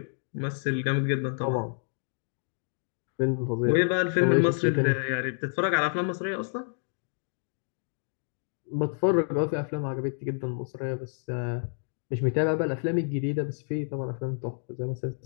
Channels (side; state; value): right; silent; digital silence